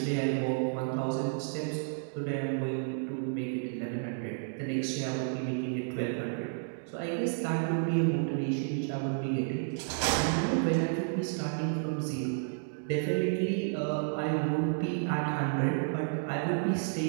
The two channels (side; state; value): left; silent; digital silence